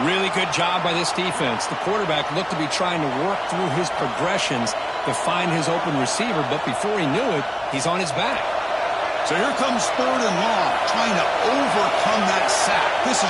really good job by this defense. The quarterback looked to be trying to work through his progressions to find his open receiver, but before he knew it, he's on his back. So here comes third and long, trying to overcome that sack. This is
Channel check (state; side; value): identical; both; correlation 1.00